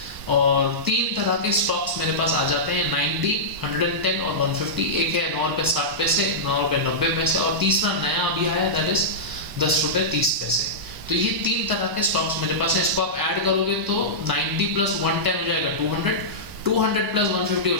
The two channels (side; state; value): left; late; 1.0 ms